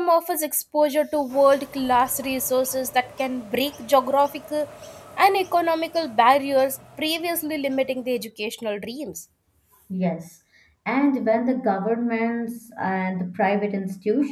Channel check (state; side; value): identical; both; correlation 1.00